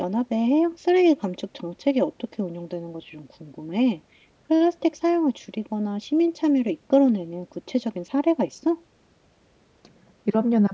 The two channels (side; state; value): both; identical; correlation 1.00